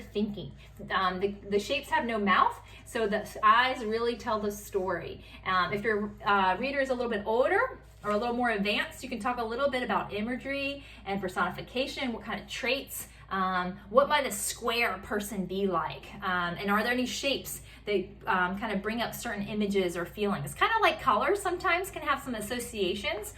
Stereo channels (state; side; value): identical; both; correlation 1.00